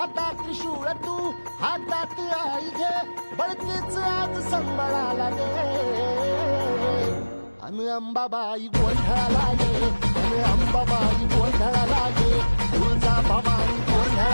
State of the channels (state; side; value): inverted; both; correlation -1.00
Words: त्रिशूळ तू हातात आई घे बळतेच आज संबळाला दे अन अंबाबाई गोंधळाला गे अन अंबाबाई गोंधळाला गे तुळजा भवानी